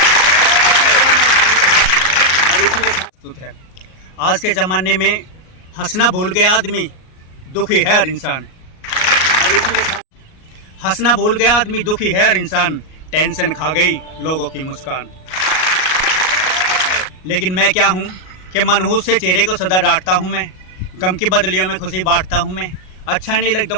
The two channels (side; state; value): right; late; 38 ms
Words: है। आज के ज़माने में हंसना भूल गया आदमी, दुखी है हर इंसान। हंसना भूल गया आदमी, दुखी है हर इंसान। टेंशन खा गई लोगों की मुस्कान। लेकिन मैं क्या हूँ कि मनहूस से चेहरे को सदा डांटता हूँ मैं। गम की बदलियों में खुशी बांटता हूँ मैं। अच्छा नहीं लगता